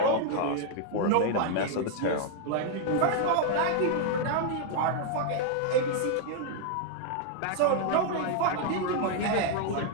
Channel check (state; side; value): different; both; correlation 0.00